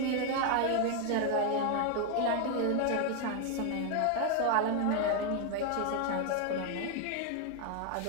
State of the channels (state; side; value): different; both; correlation 0.01